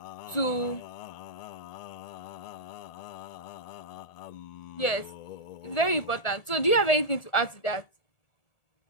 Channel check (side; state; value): right; late; 1.4 ms